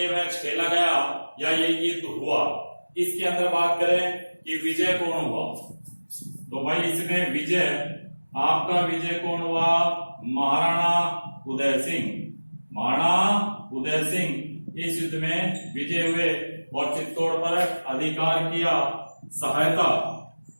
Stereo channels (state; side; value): inverted; both; correlation -1.00